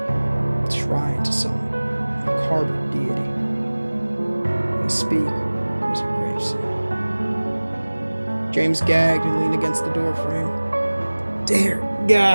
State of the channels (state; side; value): inverted; both; correlation -1.00